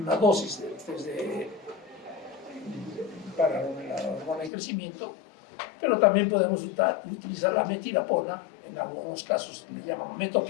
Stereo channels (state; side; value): drops out; right; at 4.5 s